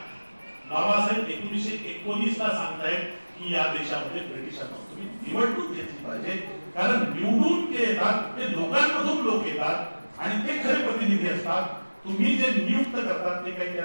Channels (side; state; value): both; inverted; correlation -1.00